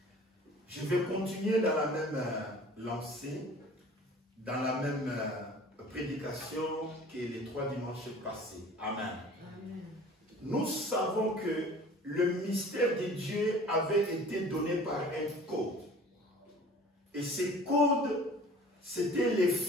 Je vais continuer dans la même lancée, dans la même prédication que les 3 dimanches passés. Amen. Amen. Nous savons que le mystère de Dieu avait été donné par un code. Et ces codes, c'était les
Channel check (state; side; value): normal; both; correlation 0.46